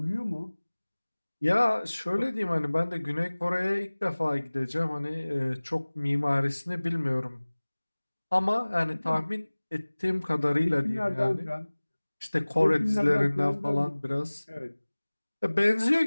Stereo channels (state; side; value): inverted; both; correlation -1.00